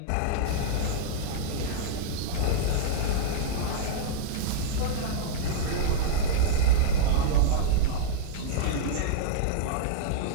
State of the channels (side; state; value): both; different; correlation -0.02